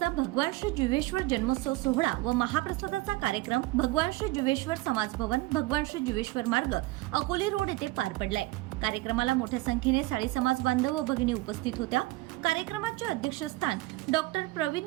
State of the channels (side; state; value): left; quieter; 19.4 dB